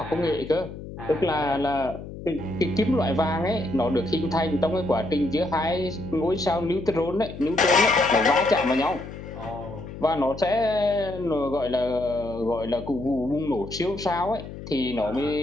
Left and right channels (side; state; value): left; noise; hum, 12 dB below the sound